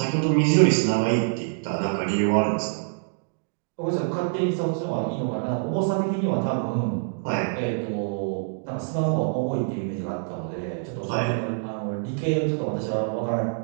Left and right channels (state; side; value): silent; left; digital silence